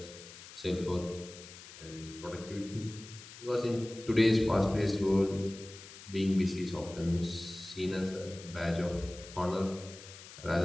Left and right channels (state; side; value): noise; left; hiss, 16 dB below the sound